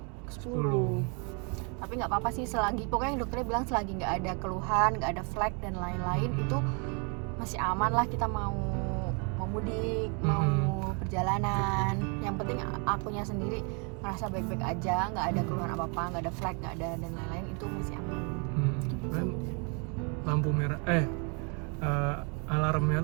10. Tapi nggak apa-apa sih, selagi pokoknya dokternya bilang selagi nggak ada keluhan, nggak ada flek dan lain-lain, itu masih aman lah. Kita mau mudik, mau perjalanan, yang penting akunya sendiri merasa baik-baik aja, nggak ada keluhan apa-apa, nggak ada flek, nggak ada dan lain-lain, itu masih aman. Kan lampu merah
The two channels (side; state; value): left; quieter; 35.3 dB